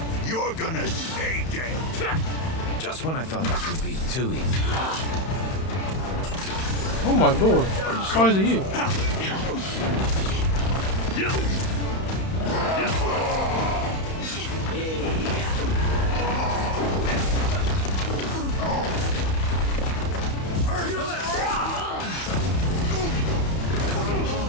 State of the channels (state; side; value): late; right; 31 ms